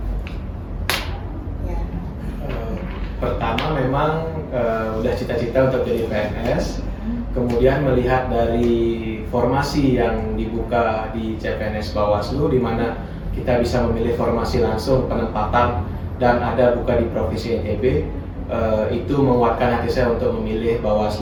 Ya. Pertama memang udah cita-cita untuk jadi PNS. Kemudian melihat dari formasi yang dibuka di CPNS Bawaslu, di mana kita bisa memilih formasi langsung penempatan dan ada buka di Provinsi NTB, itu menguatkan hati saya untuk memilih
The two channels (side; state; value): both; identical; correlation 1.00